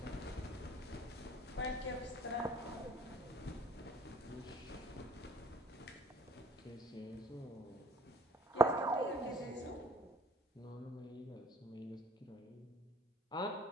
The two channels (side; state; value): both; normal; correlation 0.52